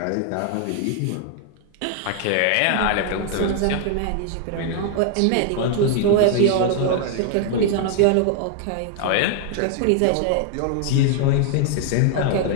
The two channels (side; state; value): both; different; correlation 0.00